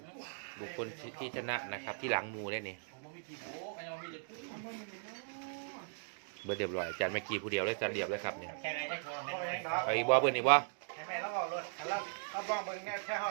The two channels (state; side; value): silent; left; digital silence